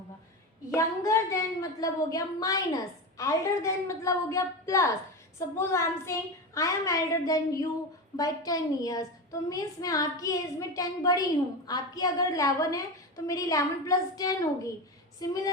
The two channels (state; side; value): normal; both; correlation 0.21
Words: यंगर देन मतलब हो गया माइनस, एल्डर देन मतलब हो गया plus. Suppose I am saying I am elder than you by 10 years, तो मीन्स मैं आपकी एज में 10 बड़ी हूँ। आपकी अगर 11 है तो मेरी 11 प्लस 10 होगी।